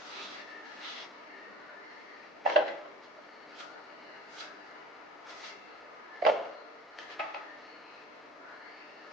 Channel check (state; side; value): normal; both; correlation 0.42